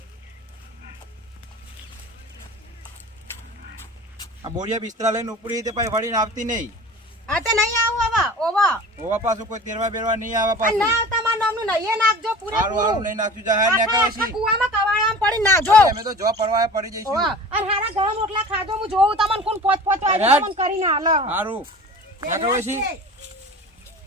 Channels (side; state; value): both; normal; correlation 0.39